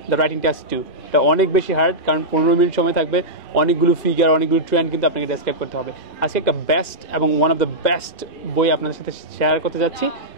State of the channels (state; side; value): late; right; 2.1 ms